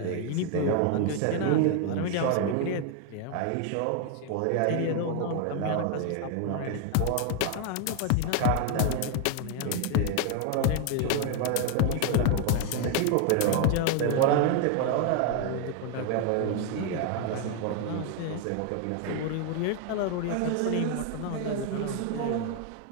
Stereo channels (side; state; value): both; different; correlation 0.01